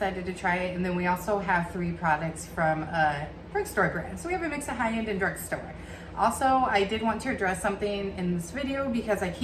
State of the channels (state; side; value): identical; both; correlation 1.00